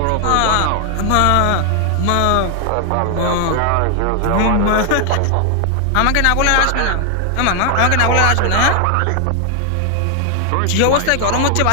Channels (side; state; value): both; different; correlation 0.00